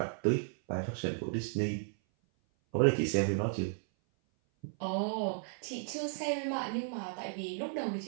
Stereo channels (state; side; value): silent; left; 55 dB below the other